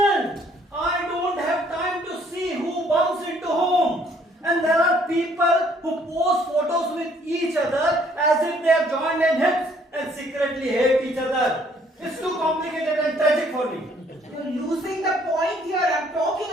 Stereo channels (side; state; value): both; normal; correlation 0.63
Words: I don't have time to see who bumps into whom. And there are people who post photos with each other as if they are joined in hips and secretly hate each other. It's too complicated and tragic for me. You're losing the point here. I'm talking